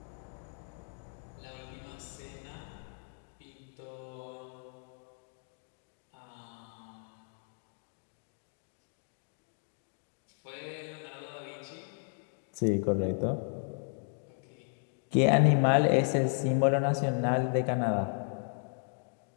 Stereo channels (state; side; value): silent; right; 55 dB below the other